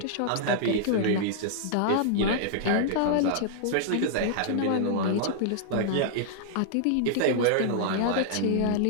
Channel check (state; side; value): different; both; correlation -0.01